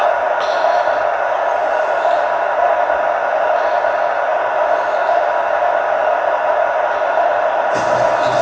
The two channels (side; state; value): both; identical; correlation 1.00